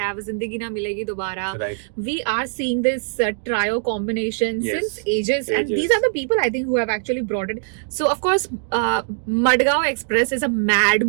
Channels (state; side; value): silent; left; 61 dB below the other